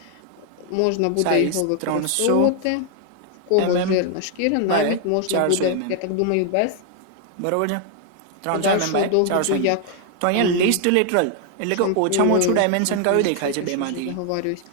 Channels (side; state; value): both; different; correlation 0.00